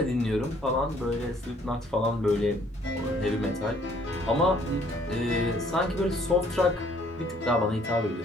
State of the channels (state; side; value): normal; both; correlation 0.62